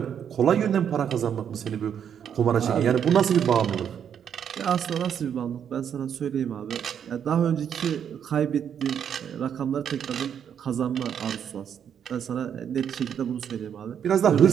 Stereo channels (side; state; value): left; quieter; 8.4 dB